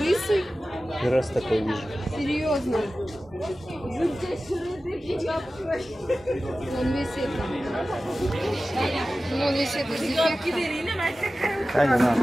Первый раз такой вижу. Серьезно? Он весь это. Он весь это с дефектом. А, не надо.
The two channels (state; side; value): normal; both; correlation 0.95